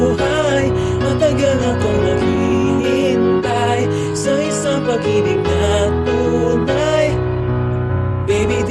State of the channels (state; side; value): identical; both; correlation 1.00